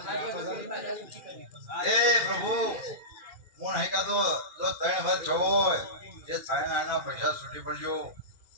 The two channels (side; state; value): left; late; 2.4 ms